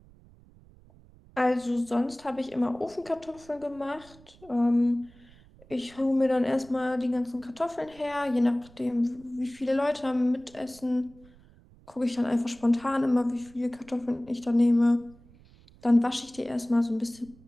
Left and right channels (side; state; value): right; noise; rumble, 25 dB below the sound